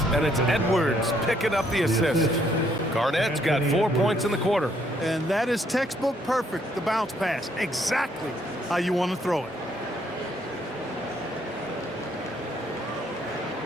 and it's Edwards picking up the assist. Garnett's got 4 points in the quarter. And that is textbook perfect, the bounce pass. Exactly how you want to throw it.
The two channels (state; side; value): normal; both; correlation 0.69